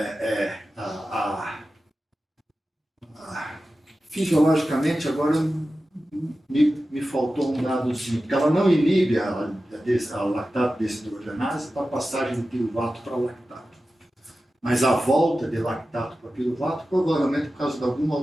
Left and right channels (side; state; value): both; normal; correlation 0.94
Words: fisiologicamente, agora me faltou um dadozinho, porque ela não inibe a lactato desidrogenase para a passagem do piruvato para lactato. Mas a volta de lactato para piruvato, provavelmente por causa de alguma